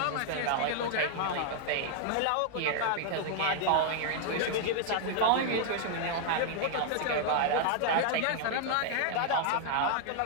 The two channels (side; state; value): both; different; correlation 0.00